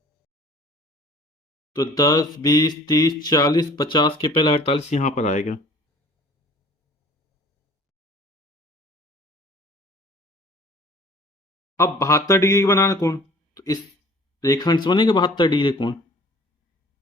तो 10, 20, 30, 40, 50 के पहले 48 यहां पर आएगा। अब 72 डिग्री का बनाना कोण, तो इस रेखाखंड से बनेगा 72 डिग्री कोण।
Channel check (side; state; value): both; normal; correlation 0.49